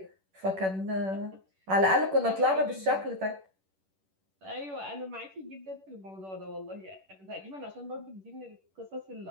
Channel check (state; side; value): late; left; 10 ms